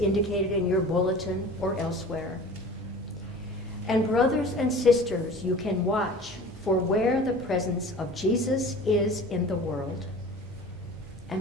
in your bulletin or elsewhere. And brothers and sisters, you can watch for where the presence of Jesus is in the world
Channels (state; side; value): normal; both; correlation 0.41